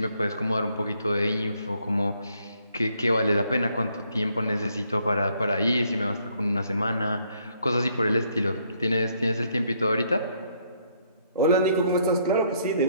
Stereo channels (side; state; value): both; inverted; correlation -0.69